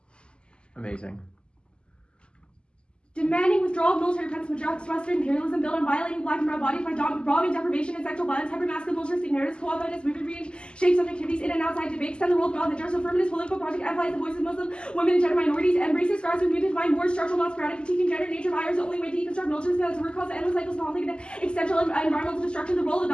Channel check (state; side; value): late; right; 0.050 ms